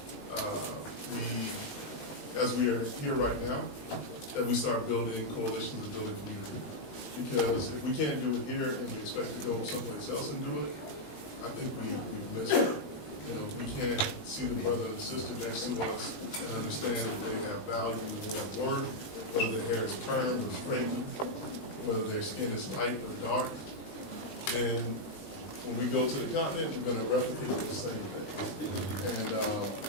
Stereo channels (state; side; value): late; right; 20 ms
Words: as we are here right now, that we start building coalitions and building community. Because if we can't do it here and we expect to go someplace else and do it, I think we've missed it. We can't see the brother and the sister next to us and understand that they have value and they have worth, whether their hair is permed or straightened, whether their skin is light or dark. Then when we go to the continent, we're going to replicate the same things.